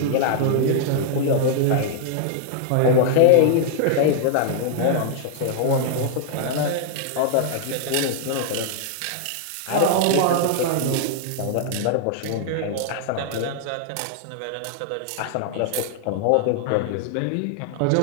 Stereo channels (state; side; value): different; both; correlation -0.01